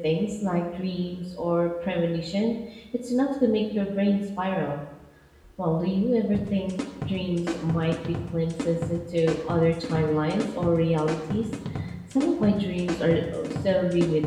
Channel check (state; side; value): identical; both; correlation 1.00